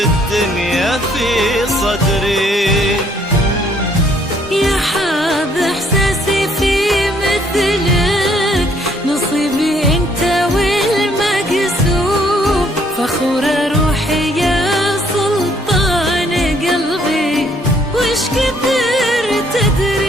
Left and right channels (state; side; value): normal; both; correlation 0.66